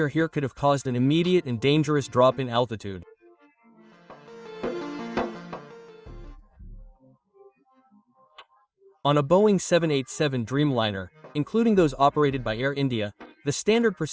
here could have caused an immediate and dangerous drop in altitude. On a Boeing 787 Dreamliner, including those operated by Air India, the standard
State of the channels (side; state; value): both; identical; correlation 1.00